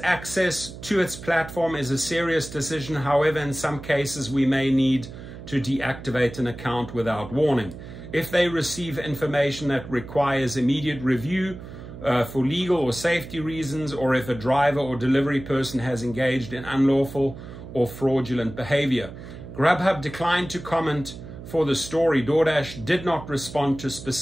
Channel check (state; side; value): noise; right; hum, 13 dB below the sound